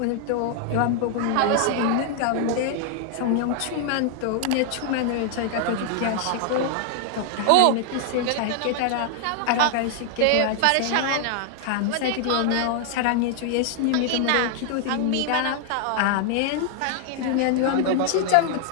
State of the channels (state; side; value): different; both; correlation 0.00